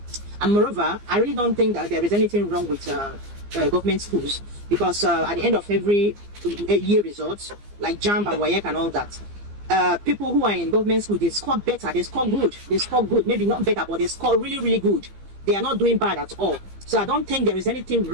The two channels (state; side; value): late; left; 15 ms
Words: And moreover, I really don't think that there is anything wrong with government schools, because at the end of every year results, like JAMB and WAEC and all that, people who are in government school, they score better, they score good, maybe not better, but they score really, really good. They are not doing bad at all. So I don't think there is anything